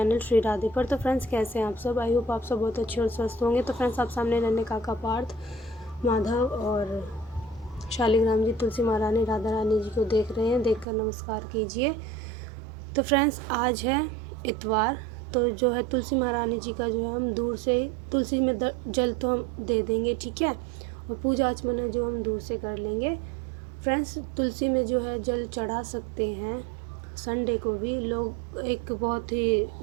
श्री राधे पर। तो फ्रेंड्स, कैसे हैं आप सब? आई होप आप सब बहुत अच्छे और स्वस्थ होंगे। तो फ्रेंड्स, आप सामने रहने काका पार्थ, माधव और शालिग्राम जी, तुलसी महारानी, राधा रानी जी को देख रहे हैं। देखकर नमस्कार कीजिए। तो फ्रेंड्स, आज है इतवार। तो जो है तुलसी महारानी जी का जो है हम दूर से तुलसी में जल तो हम दे देंगे, ठीक है, और पूजा आचमन जो हम दूर से कर लेंगे। फ्रेंड्स, तुलसी में जो है जल चढ़ा सकते हैं। संडे को भी लोग, एक बहुत ही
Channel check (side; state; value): left; drops out; at 10.9 s